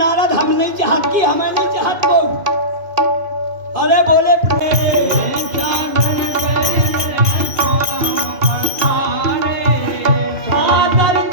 हम नहीं चाहत की, हमें नहीं चाहत को। अरे बोले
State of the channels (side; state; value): left; late; 2.5 ms